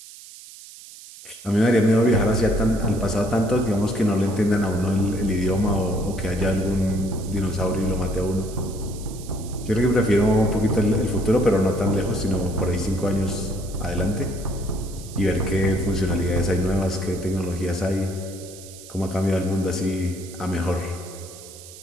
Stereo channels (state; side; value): noise; right; hiss, 17 dB below the sound